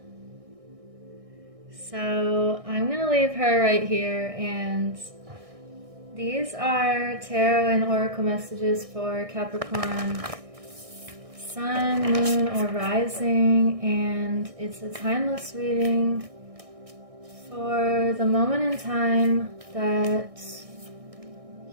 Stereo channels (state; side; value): late; left; 1.6 ms